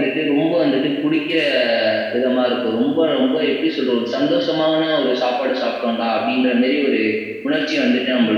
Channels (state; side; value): identical; both; correlation 1.00